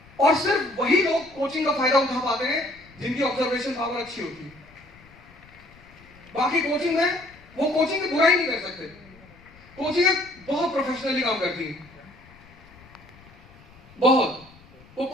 और सिर्फ वही लोग कोचिंग का फायदा उठा पाते हैं जिनकी ऑब्जर्वेशन पावर अच्छी होती है। बाकी कोचिंग में, वो कोचिंग की बुराई नहीं कर सकते। कोचिंग बहुत प्रोफेशनली काम करती है, बहुत। वो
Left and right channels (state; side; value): noise; left; rumble, 25 dB below the sound